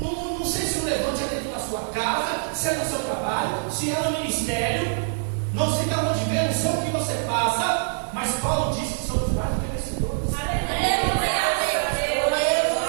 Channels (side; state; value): left; silent; 62 dB below the other